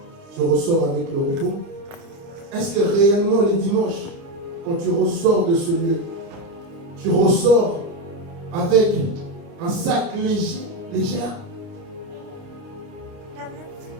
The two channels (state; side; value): late; left; 30 ms